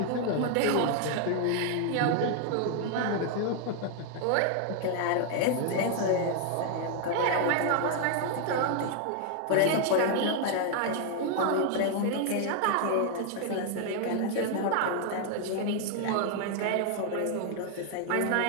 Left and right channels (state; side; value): different; both; correlation 0.00